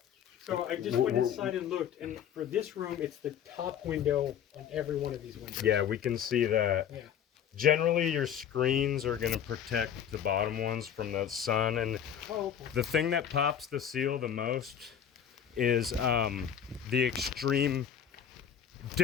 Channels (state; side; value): quieter; right; 8.9 dB